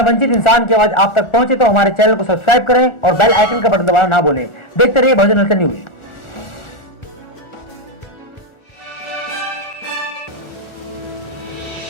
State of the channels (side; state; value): right; late; 1.4 ms